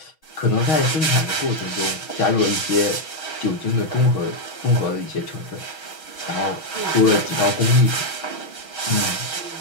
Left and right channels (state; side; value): late; right; 6.3 ms